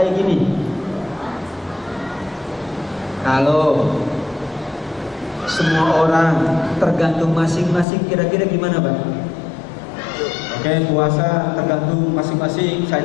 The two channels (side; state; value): right; drops out; at 7.9 s